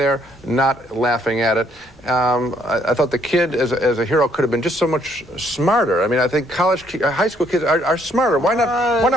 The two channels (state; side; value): normal; both; correlation 0.68